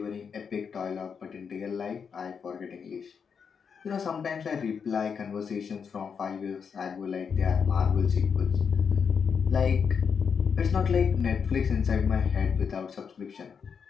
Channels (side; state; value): right; quieter; 6.4 dB